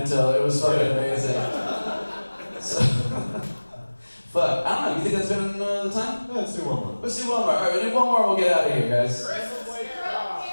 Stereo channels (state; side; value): inverted; both; correlation -1.00